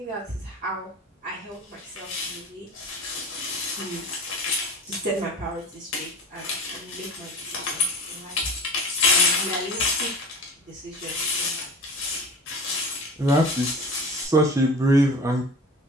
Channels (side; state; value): both; normal; correlation 0.36